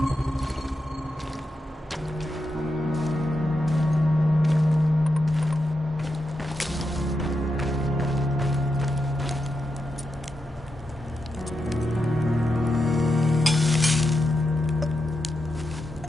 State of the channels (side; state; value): both; normal; correlation 0.87